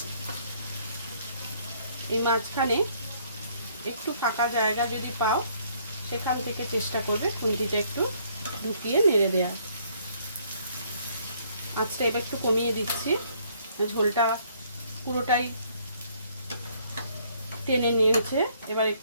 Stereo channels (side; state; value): both; inverted; correlation -0.65